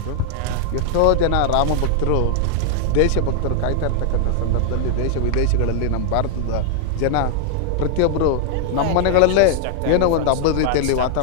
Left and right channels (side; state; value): both; different; correlation -0.01